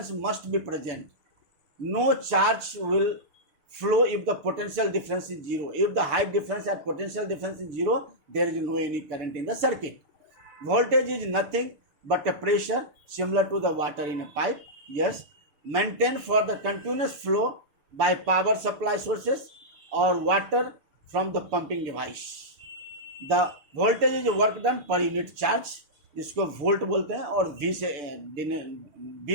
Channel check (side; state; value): left; late; 6.9 ms